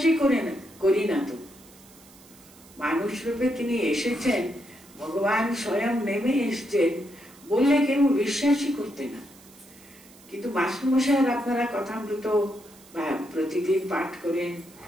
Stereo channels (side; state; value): right; noise; hiss, 24 dB below the sound